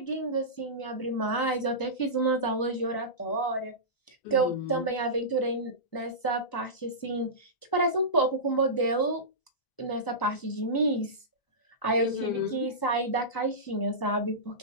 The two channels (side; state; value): right; late; 1.0 ms